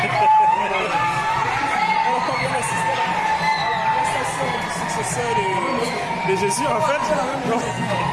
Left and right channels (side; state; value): both; identical; correlation 1.00